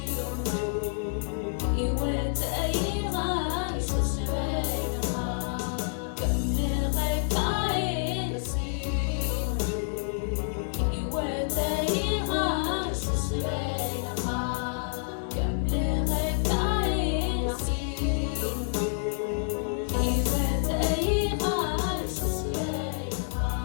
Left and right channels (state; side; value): silent; right; digital silence